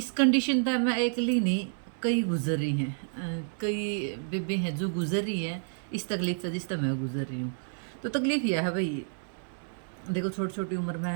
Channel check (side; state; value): left; silent; digital silence